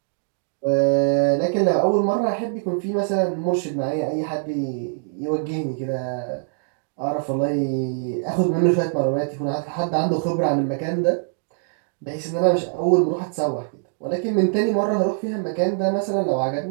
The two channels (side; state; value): left; silent; digital silence